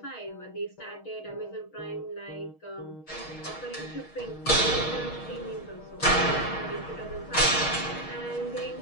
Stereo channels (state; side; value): late; right; 6.4 ms